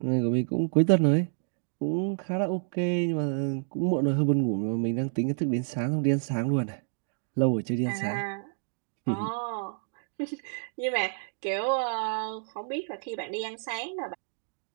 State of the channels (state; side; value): silent; left; digital silence